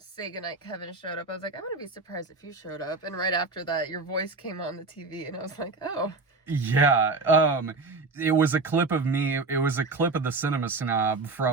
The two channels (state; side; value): quieter; left; 3.7 dB